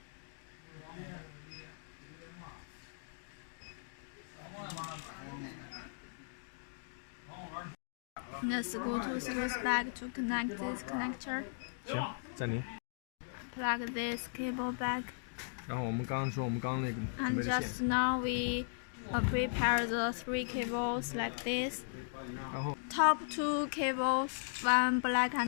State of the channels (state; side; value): silent; right; digital silence